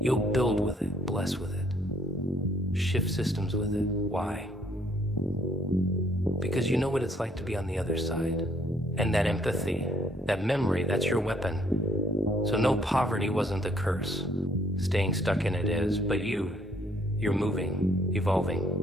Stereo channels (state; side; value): normal; both; correlation 0.64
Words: You'll build with it, bless with it, shift systems with it. Why? Because you know what it's like to be on the other side. And that empathy, that memory, that's your weapon. So no, poverty wasn't the curse. Staying stuck in it is, but you're moving,